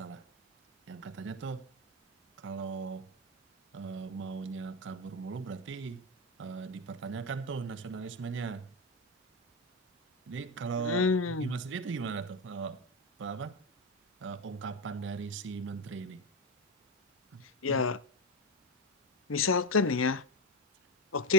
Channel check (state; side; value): normal; both; correlation 0.14